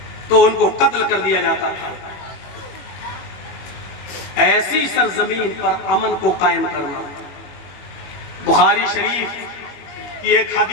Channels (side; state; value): right; late; 21 ms